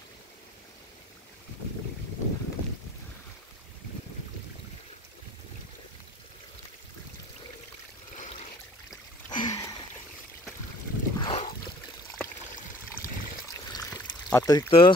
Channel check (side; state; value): both; normal; correlation 0.53